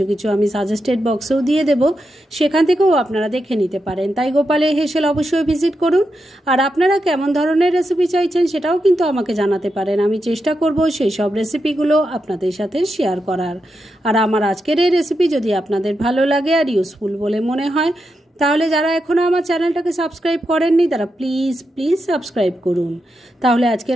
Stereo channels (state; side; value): normal; both; correlation 0.86